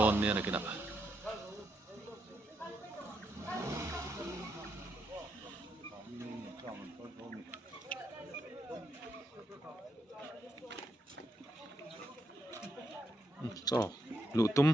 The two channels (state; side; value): normal; both; correlation 0.80